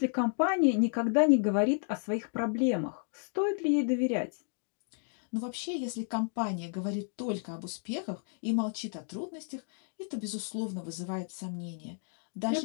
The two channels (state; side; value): silent; right; 56 dB below the other